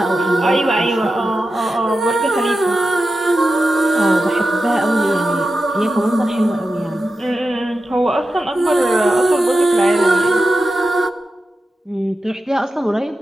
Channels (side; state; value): both; normal; correlation 0.91